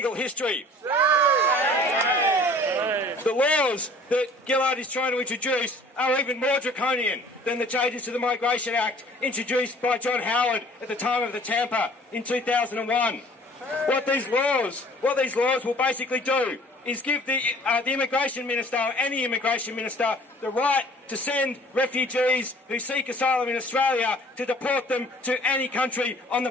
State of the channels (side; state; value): both; normal; correlation 0.51